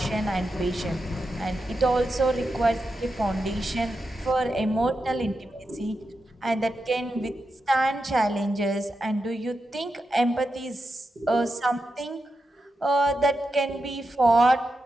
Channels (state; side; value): normal; both; correlation 0.88